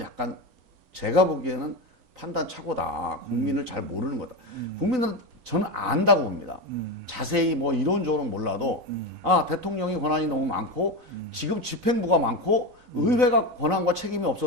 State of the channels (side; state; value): left; late; 3.9 ms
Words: 제가 보기에는 판단 착오다. 국민을 잘 모르는 거다. 국민은 저는 안다고 봅니다. 자세히 뭐 이론적으로는 몰라도 아, 대통령이 권한이 너무 많고 지금 집행부가 많고 의회가 권한과 책임이